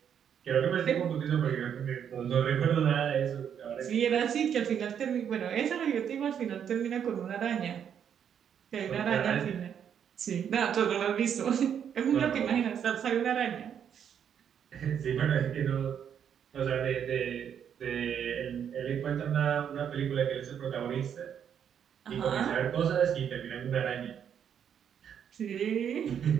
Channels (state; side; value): quieter; left; 8.4 dB